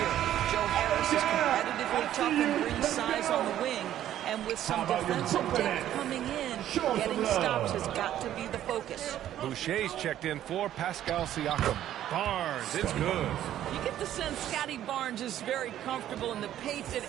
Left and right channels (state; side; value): quieter; left; 11.9 dB